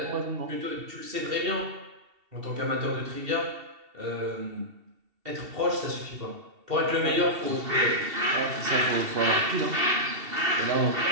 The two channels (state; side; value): late; left; 2.7 ms